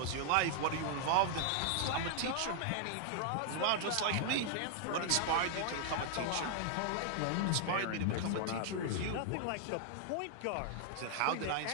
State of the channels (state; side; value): different; both; correlation -0.01